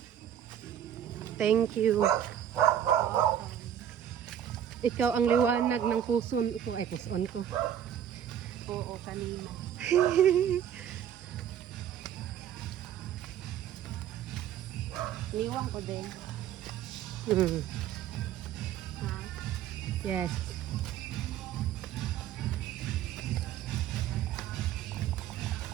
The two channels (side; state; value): left; quieter; 10.0 dB